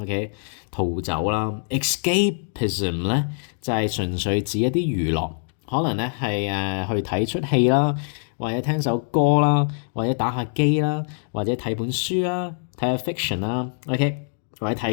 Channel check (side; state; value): right; silent; digital silence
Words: ，OK， 逃走啦。escapism 咧就係純粹指一啲娛樂，可能咧係去睇出戲啦。或者聽首歌啦，或者打下機啦，或者睇本書啦，睇下 fiction 啦 ，OK， 或者睇